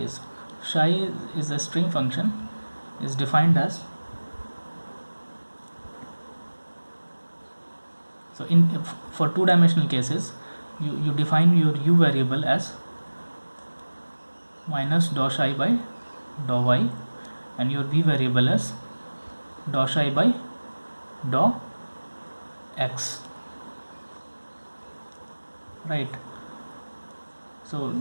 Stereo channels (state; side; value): inverted; both; correlation -1.00